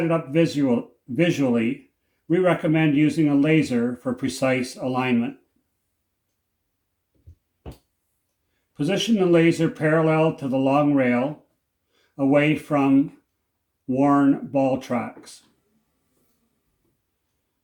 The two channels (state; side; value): identical; both; correlation 1.00